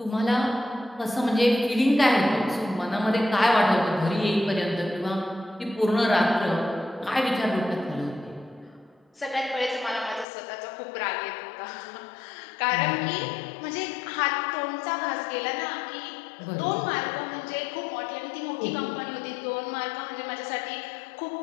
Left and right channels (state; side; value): drops out; right; at 10.2 s